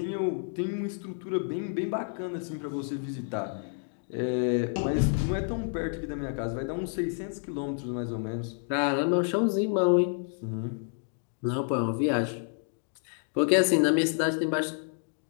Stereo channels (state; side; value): silent; right; 58 dB below the other